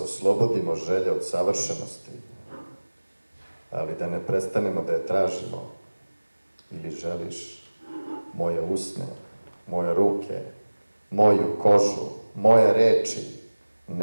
želje od savršenosti, ali da ne prestanemo da je tražimo? Ili želiš moje usne, moje ruke, moju kožu, moje reči,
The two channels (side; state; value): both; inverted; correlation -1.00